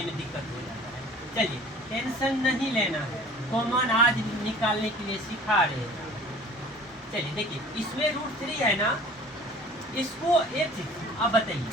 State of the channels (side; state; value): both; normal; correlation 0.47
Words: में दिक्कत हो जाता है। चलिए टेंशन नहीं लेना है, कॉमन आज निकालने के लिए सिखा रहे हैं। चलिए देखिए, इसमें √3 है ना, इसको एक चीज अब बताइए,